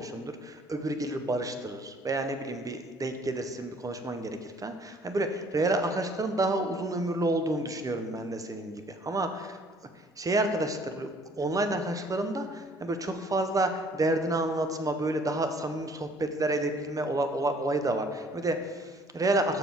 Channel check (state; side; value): normal; both; correlation 0.57